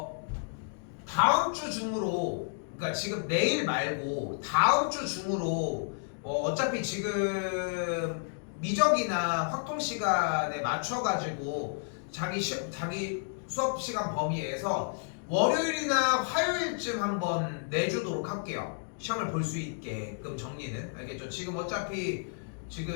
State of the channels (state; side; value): silent; right; digital silence